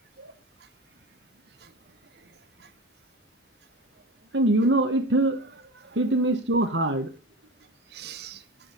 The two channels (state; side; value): normal; both; correlation 0.29